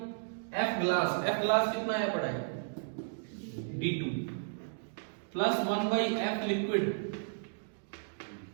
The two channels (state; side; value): silent; left; digital silence